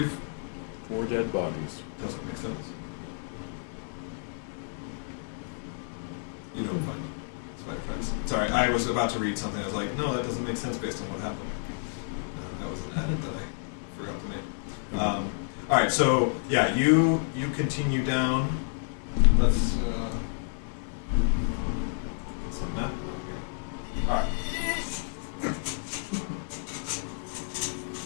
4 dead bodies. Doesn't make sense. You don't find spider tracks. Sorry, I was about to read something. I was like, no, that doesn't make sense based on what happened. That was an edit that I forgot to make. All right, so yeah, you continue down. Let's a map out here. All right.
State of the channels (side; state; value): right; silent; 57 dB below the other